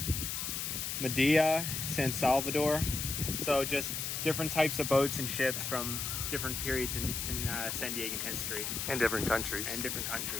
Medea, San Salvador. So just different types of boats and ships from different periods in San Diegan history. And different countries.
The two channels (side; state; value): left; noise; hiss, 3 dB below the sound